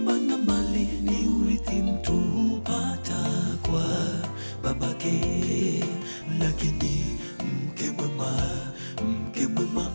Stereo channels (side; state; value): both; inverted; correlation -1.00